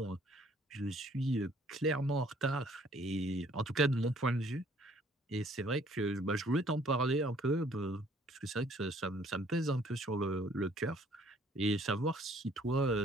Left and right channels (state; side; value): normal; both; correlation 0.60